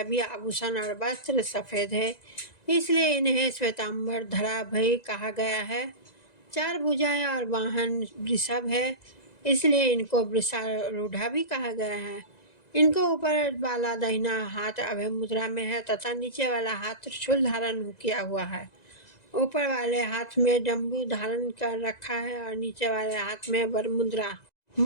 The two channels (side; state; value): right; late; 1.9 ms